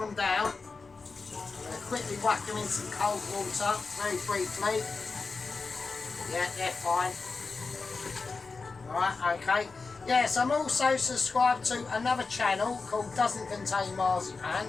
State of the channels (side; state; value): right; quieter; 4.3 dB